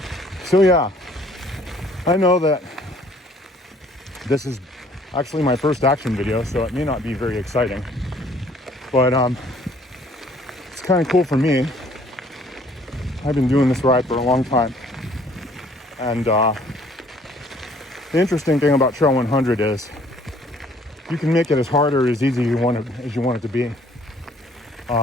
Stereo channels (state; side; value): normal; both; correlation 0.59